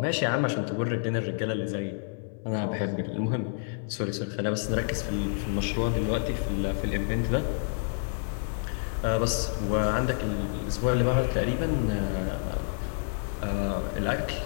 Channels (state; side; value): silent; right; 56 dB below the other